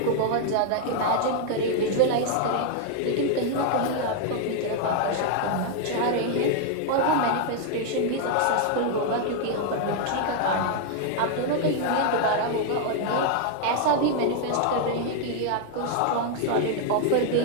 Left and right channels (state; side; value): different; both; correlation 0.00